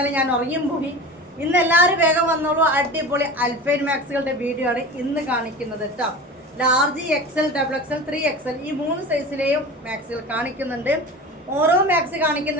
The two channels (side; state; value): both; normal; correlation 0.33